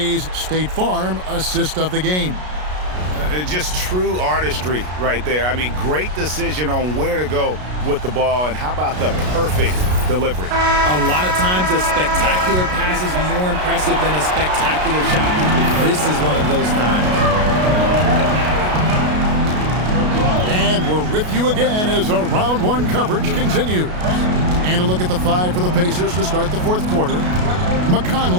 State Farm assist of the game. Just true artistry right there. I mean, great decision on where to go with the ball, and how about the perfect delivery? A lot of times a spectacular pass is more impressive than a spectacular shot. This is one of those times. And we're with you again as our round one coverage continues. And a look at the five for the Pacers to start the fourth quarter.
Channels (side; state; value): left; late; 33 ms